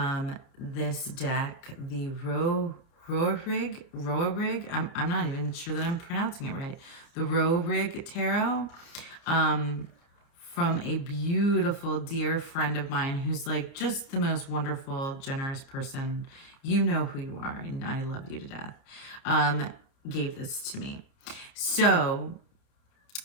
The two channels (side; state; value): right; late; 30 ms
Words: this deck, the Roerig, I'm not even sure that I'm pronouncing it right. The Roerig Tarot, from a beautiful dear friend of mine who's like just the most wonderful, generous person. You know who you are, and I love you to death. Gave this to me. So